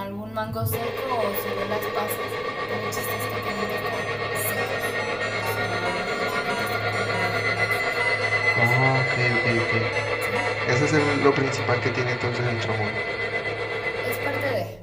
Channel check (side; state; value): right; noise; rumble, 25 dB below the sound